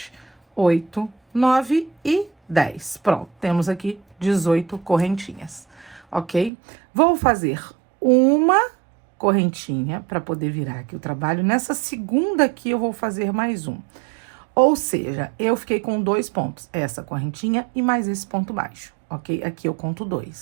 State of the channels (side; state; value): left; drops out; at 6.5 s